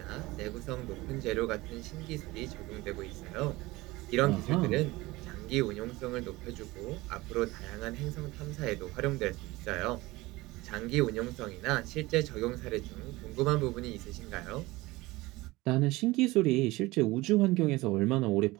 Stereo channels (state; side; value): quieter; left; 20.4 dB